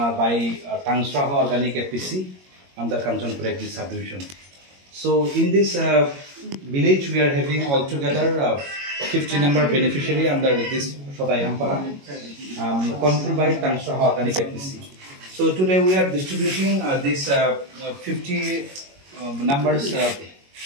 by Tangsraha Organic FPC under Kanchanpur Agri subdivision. So, in this village, we are having altogether 50 number beneficiary under this Shodaihampara, controlled by Tangsraha Organic FPC. So today we are distributing this 50 numbers,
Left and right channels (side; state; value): left; late; 21 ms